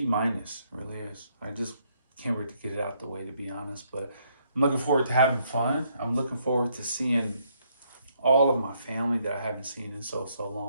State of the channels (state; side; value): inverted; both; correlation -0.71